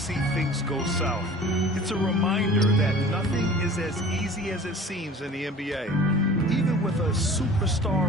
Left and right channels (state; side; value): normal; both; correlation 0.44